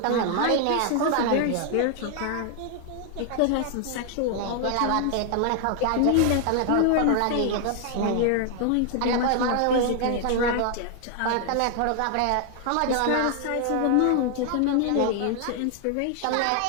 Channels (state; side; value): different; both; correlation 0.00